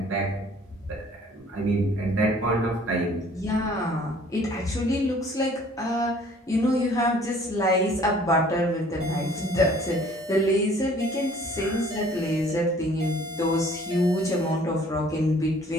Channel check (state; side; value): normal; both; correlation 0.55